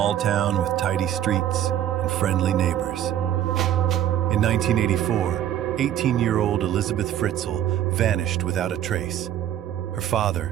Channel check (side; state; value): left; quieter; 11.2 dB